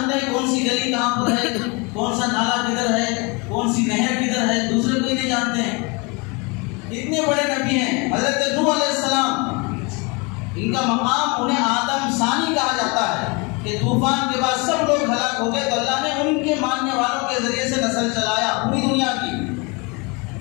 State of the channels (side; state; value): right; quieter; 28.7 dB